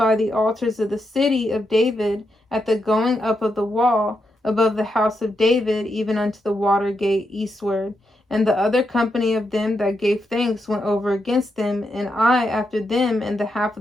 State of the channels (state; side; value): normal; both; correlation 0.83